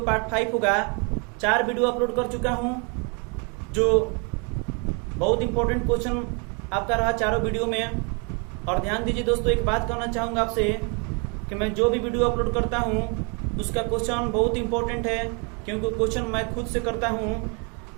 पार्ट 5 होगा। 4 वीडियो अपलोड कर चुका हूं जो बहुत इंपॉर्टेंट क्वेश्चन आपका रहा चारों वीडियो में। और ध्यान दीजिए दोस्तों, एक बात कहना चाहूंगा आपसे कि मैं जो भी वीडियो अपलोड करता हूं उसका क्वेश्चन बहुत इंपॉर्टेंट है, क्योंकि क्वेश्चन मैं खुद से करता हूं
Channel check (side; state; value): left; quieter; 35.2 dB